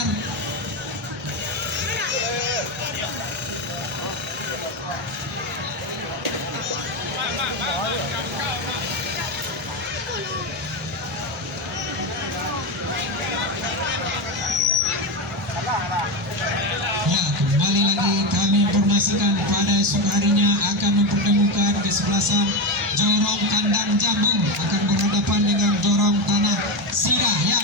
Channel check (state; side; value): normal; both; correlation 0.14